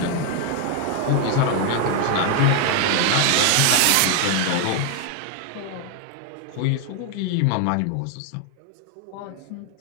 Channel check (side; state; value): both; different; correlation 0.01